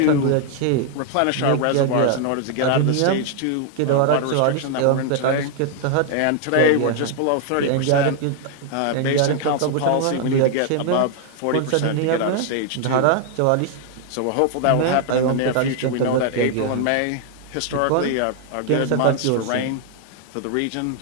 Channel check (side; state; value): both; different; correlation 0.00